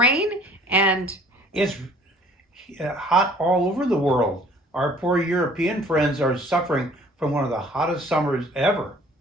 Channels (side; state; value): both; normal; correlation 0.54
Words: And It's hot all over the world. Our poor European friends are suffering from one of the hottest summers ever.